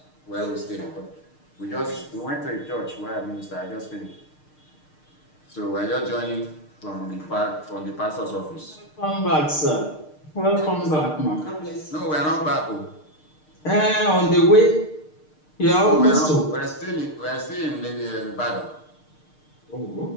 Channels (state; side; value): late; right; 6.6 ms